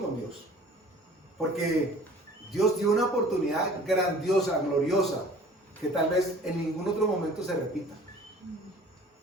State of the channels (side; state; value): both; normal; correlation 0.48